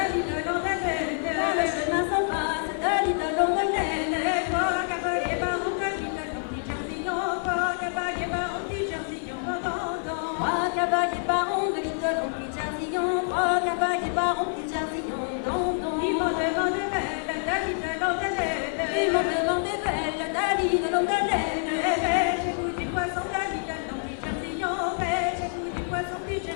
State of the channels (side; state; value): right; silent; digital silence